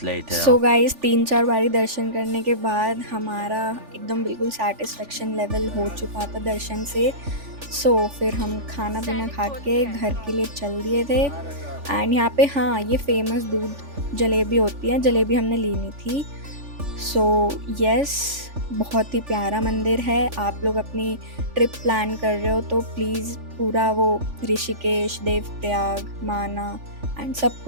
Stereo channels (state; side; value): late; left; 3.4 ms